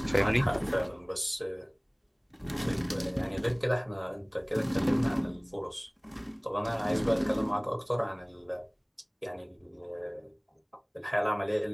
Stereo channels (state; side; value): identical; both; correlation 1.00